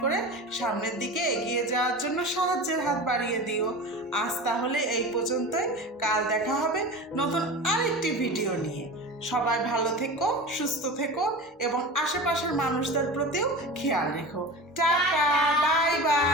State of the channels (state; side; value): normal; both; correlation 0.31